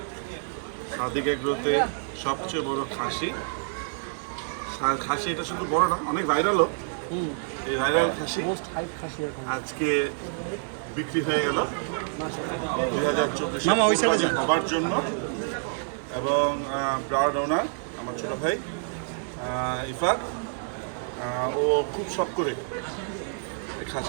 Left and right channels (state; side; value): silent; left; 60 dB below the other